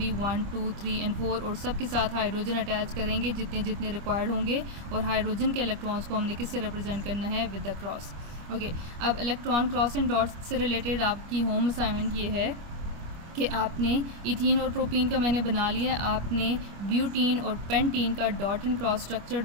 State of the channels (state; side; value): late; left; 25 ms